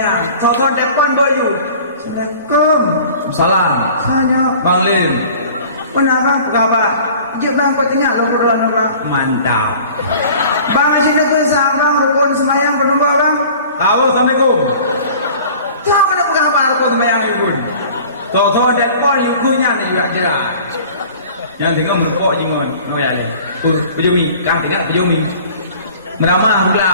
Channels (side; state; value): both; inverted; correlation -0.46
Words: so depan boy you Assalamualaikum Salam saya Bang Lim kenapa kabar? Jom bang kau tengok lu berdua bang. Mantap Bang asyik nak kesal bang rukun semayang penumbuk bang. Assalamualaikum Tahu kenapa kabar rukun semayang itu? Tahu depan yukunya ni juga jelas yang tengok merpok jingon noya le pejumi kan tengok pejumi meramah